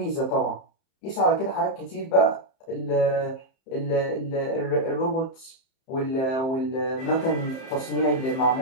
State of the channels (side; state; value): right; late; 30 ms